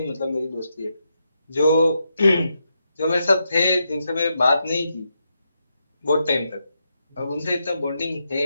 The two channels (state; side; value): inverted; both; correlation -0.84